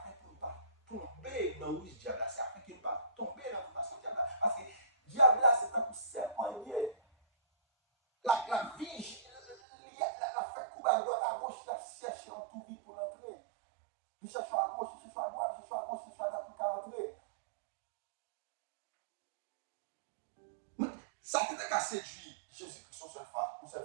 qu'on ne pas tomber dans le diable, c'est afin qu'on ne pas tomber dans la tentation diable. Parce que diable là c'est un coup serpent lié. La vie, la fait couper à droite à gauche, la cherche en tout vite pour l'entrer. Il cherche à gauche, il cherche à droite, il cherche à gauche, il cherche à droite pour l'entrer. Ça peut être qu'à séduire Jésus-Christ une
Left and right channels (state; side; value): drops out; left; at 9.6 s